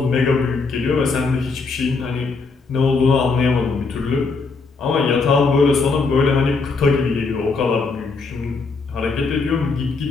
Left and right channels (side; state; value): right; quieter; 4.3 dB